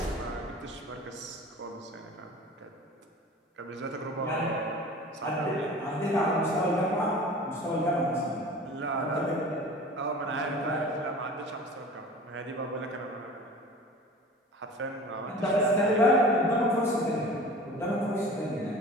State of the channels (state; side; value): normal; both; correlation 0.40